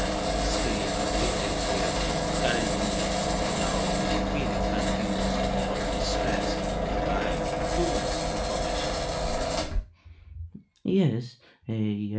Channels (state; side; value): identical; both; correlation 1.00